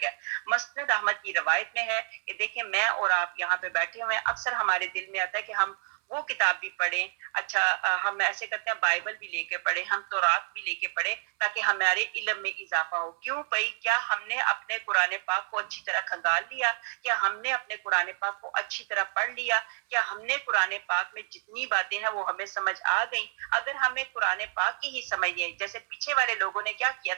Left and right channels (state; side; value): silent; left; 59 dB below the other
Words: گیا۔ مسند احمد کی روایت میں ہے کہ دیکھیں میں اور آپ یہاں پہ بیٹھے ہوئے ہیں، اکثر ہمارے دل میں آتا ہے کہ ہم وہ کتاب بھی پڑھیں، اچھا ہم ایسے کرتے ہیں بائبل بھی لے کے پڑھیں، ہم تورات بھی لے کے پڑھیں تاکہ ہمارے علم میں اضافہ ہو۔ کیوں بھائی؟ کیا ہم نے اپنے قرآن پاک کو اچھی طرح کھنگال لیا؟ کیا ہم نے اپنے قرآن پاک کو اچھی طرح پڑھ لیا؟ کیا ہم نے قرآن پاک میں جتنی باتیں ہیں وہ ہمیں سمجھ آ گئیں؟ اگر ہمیں قرآن پاک کی ہی سمجھ نہیں، جیسے پیچھے والے لوگوں نے کیا کیا